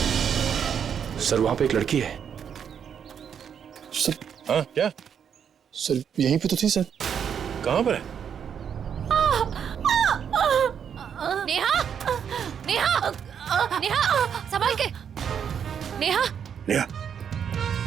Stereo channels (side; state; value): left; quieter; 7.9 dB